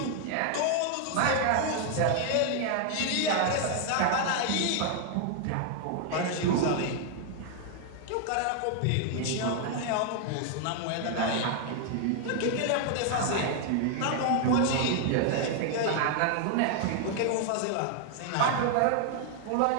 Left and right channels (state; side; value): different; both; correlation 0.00